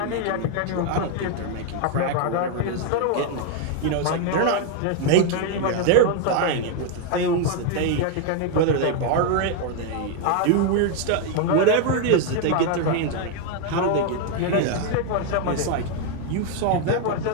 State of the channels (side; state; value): both; different; correlation 0.01